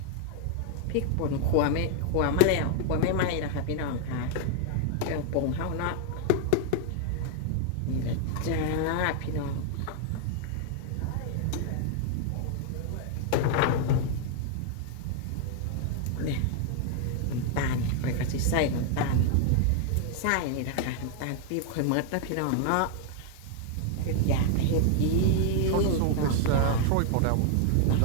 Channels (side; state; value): both; different; correlation 0.00